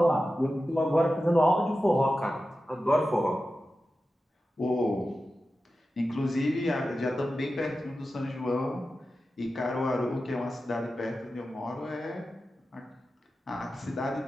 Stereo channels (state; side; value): normal; both; correlation 0.93